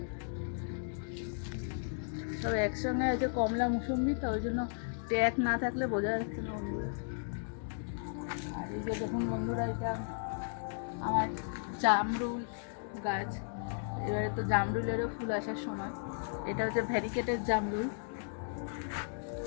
সব একসঙ্গে আছে, কমলা মুসুম্বি, তো ওই জন্য ট্যাগ না থাকলে বোঝা যাচ্ছে না বন্ধুরা। আর এই যে দেখুন বন্ধুরা, এটা আমার জামরুল গাছ। এবারে তো জামরুলেরও ফুল আসার সময়। এটা হচ্ছে ভ্যারিকেটের জামরুল।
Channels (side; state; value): right; silent; digital silence